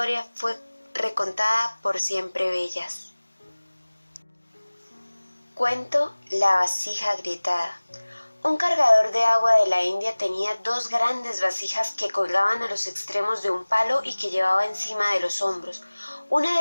fue recontada por Siempre Bellas. Cuento La vasija agrietada. Un cargador de agua de la India tenía 2 grandes vasijas que colgaban a los extremos de un palo y que llevaba encima de los hombros. Una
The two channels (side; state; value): both; inverted; correlation -1.00